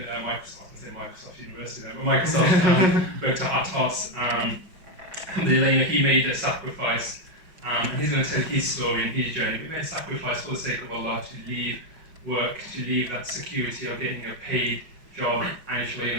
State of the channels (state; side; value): late; left; 5.4 ms